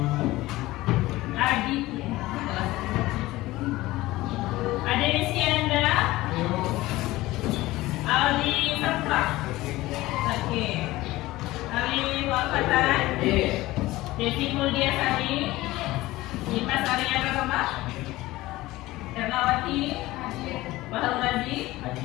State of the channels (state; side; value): quieter; right; 18.2 dB